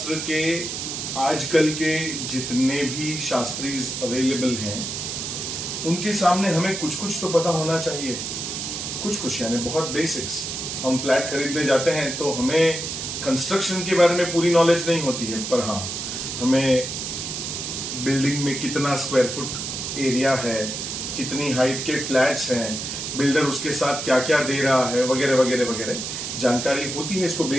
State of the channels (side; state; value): right; noise; hiss, 5 dB below the sound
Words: के आजकल के जितने भी शास्त्रीज अवेलेबल हैं उनके सामने हमें कुछ कुछ तो पता होना चाहिए, कुछ यानी बहुत बेसिक्स। हम फ्लैट खरीदने जाते हैं तो हमें कंस्ट्रक्शन के बारे में पूरी नॉलेज नहीं होती है, पर हाँ हमें बिल्डिंग में कितना स्क्वायर फुट एरिया है, कितनी हाइट के फ्लैट्स हैं, बिल्डर उसके साथ क्या क्या दे रहा है, वगैरह वगैरह वगैरह जानकारी होती है। इसको